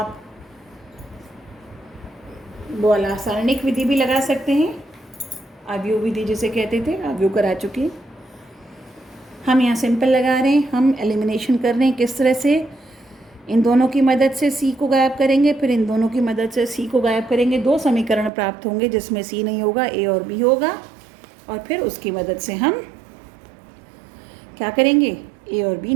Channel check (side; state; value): left; drops out; at 18.3 s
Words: बोला सारणिक विधि भी लगा सकते हैं, आव्यूह विधि जिसे कहते थे, आव्यूह करा चुके। हम यहाँ सिंपल लगा रहे हैं, हम एलिमिनेशन कर रहे हैं किस तरह से, इन दोनों की मदद से सी को गायब करेंगे, फिर इन दोनों की मदद से सी को गायब करेंगे। 2 समीकरण प्राप्त होंगे जिसमें सी नहीं होगा, ए और बी होगा, और फिर उसकी मदद से हम क्या करेंगे, ए और बी